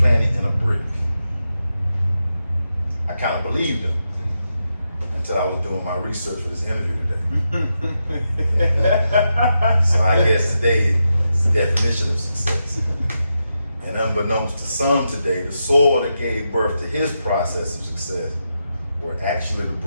it in a brick. I kind of believed them until I was doing my research for this interview today. So I guess today is the definition of success. And unbeknownst to some today, the soil that gave birth to his process of success were actually the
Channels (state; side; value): inverted; both; correlation -0.86